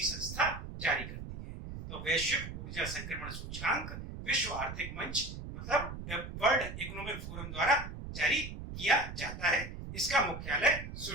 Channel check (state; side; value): noise; right; rumble, 9 dB below the sound